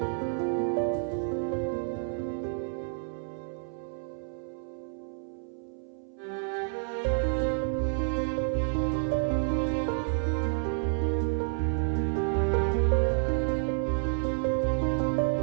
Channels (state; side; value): silent; left; 58 dB below the other